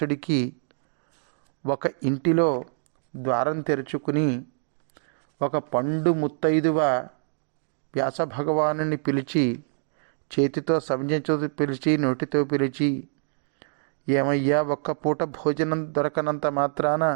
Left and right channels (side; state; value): left; silent; digital silence